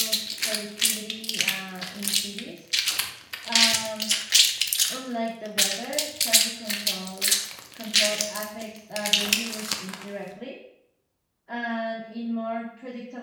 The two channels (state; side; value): identical; both; correlation 1.00